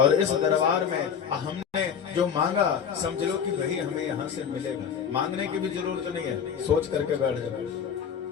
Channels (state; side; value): quieter; right; 7.5 dB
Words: इस दरबार में हमने जो मांगा, समझ लो कि भाई हमें यहाँ से मिलेगा। मांगने की भी जरूरत नहीं है, सोच करके बैठ जाओ।